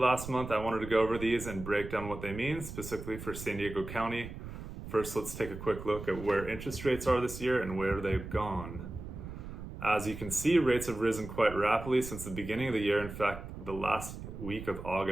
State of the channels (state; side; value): noise; right; rumble, 10 dB below the sound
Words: month. I wanted to go over these and break down what they mean, specifically for San Diego County. First, let's take a quick look at where interest rates are this year and where they've gone. As you can see, rates have risen quite rapidly since the beginning of the year. In fact, the last week of